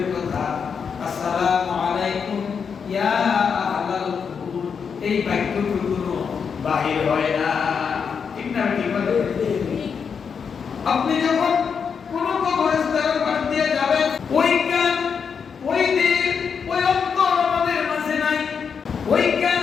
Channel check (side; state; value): right; quieter; 6.4 dB